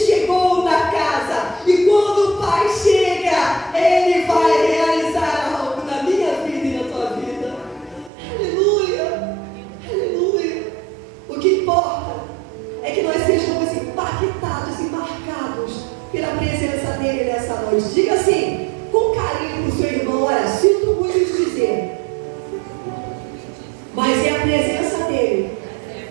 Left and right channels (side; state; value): left; drops out; at 8.1 s